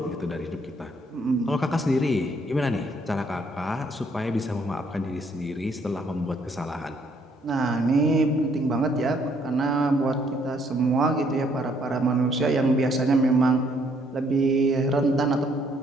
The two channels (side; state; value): both; normal; correlation 0.67